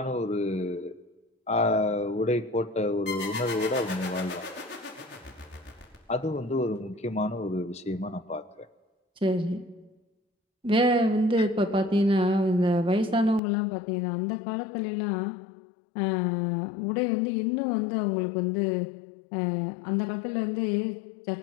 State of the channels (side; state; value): right; drops out; at 13.4 s